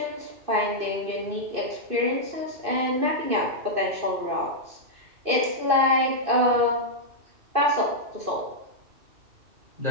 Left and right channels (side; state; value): left; late; 2.6 ms